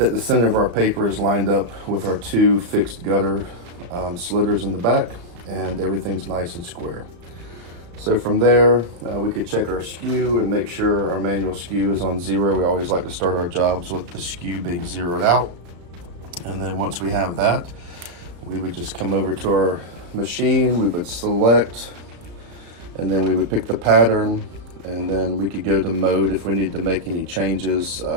the center of our paper is lined up with our 2 fixed gutter slitters in the back, and everything's nice and square. So from there, we could check our skew and make sure our manual skew is on 0. We always like to start our jobs with the skew being zeroed out. And then once we have that, we would just come over to our machine, we would select, and then we would pick the pattern, and then we could go to mode if we need to make any changes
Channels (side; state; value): left; late; 34 ms